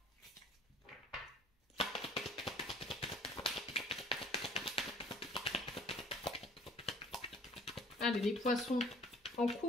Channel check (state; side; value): normal; both; correlation 0.52